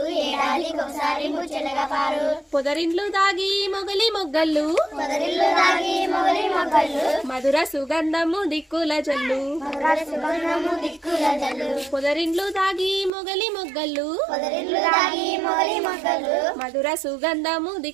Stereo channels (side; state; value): left; drops out; at 13.1 s